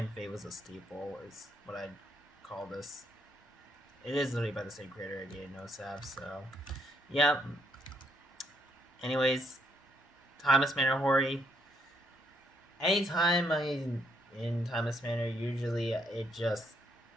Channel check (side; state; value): both; normal; correlation 0.73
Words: Fate was a steeple is what I'd call this. It is literally by the same creator, again, no sap. So yeah. Anyways, Thomas Manor Hori. Anytime I in Timeless Manor, usually it just